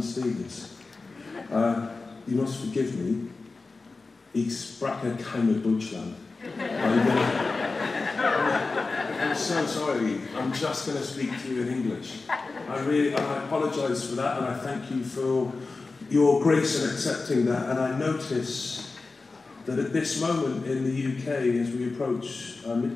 Stevens. You must forgive me. Ich spreche keine Deutschland. I'm so sorry. I'm just going to speak to you in English. I apologise for that, and I thank you for your grace in accepting that. And I notice that at this moment in the UK, as we approach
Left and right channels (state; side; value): quieter; right; 3.8 dB